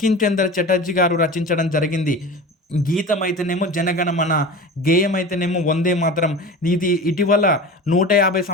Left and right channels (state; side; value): normal; both; correlation 0.33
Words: చంద్ర చటర్జీ గారు రచించడం జరిగింది. గీతం అయితేనేమో జనగణమన, గేయం అయితేనేమో వందే మాతరం. ఇది ఇటీవల 150